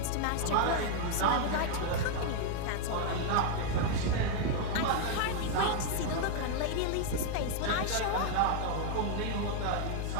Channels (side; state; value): both; different; correlation 0.00